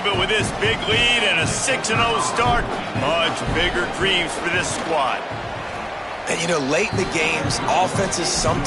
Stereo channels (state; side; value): identical; both; correlation 1.00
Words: but with this big lead and a 6-0 start, much bigger dreams for this squad. And, you know, late in the games, offenses